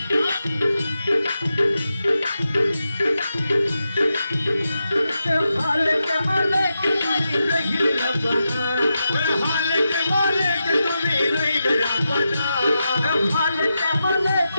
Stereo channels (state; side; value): inverted; both; correlation -0.88